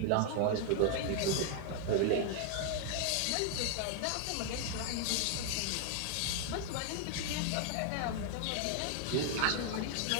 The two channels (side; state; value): both; different; correlation 0.00